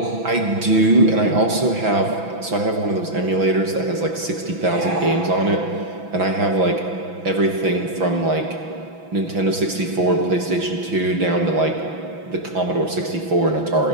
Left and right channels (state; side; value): late; left; 6.0 ms